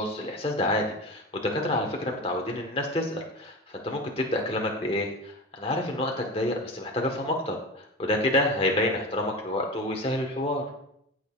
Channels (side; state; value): both; normal; correlation 0.28